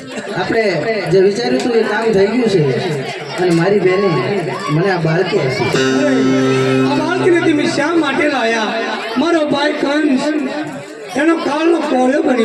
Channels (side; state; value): both; identical; correlation 1.00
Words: આપણે જે વિચાર્યું હતું એ કામ થઈ ગયું છે અને મારી બેને મને આ બાળકી આપી. આ બાળકીને તમે શા માટે લાયા? મારો ભાઈ કંસ એનો કાળનો કોળો